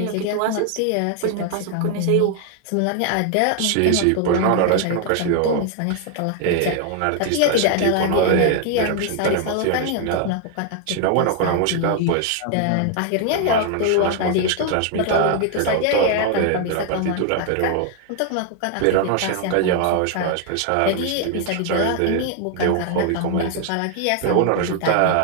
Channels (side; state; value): both; different; correlation 0.00